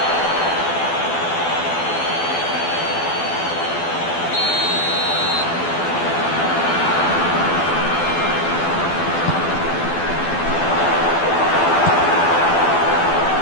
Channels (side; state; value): right; late; 12 ms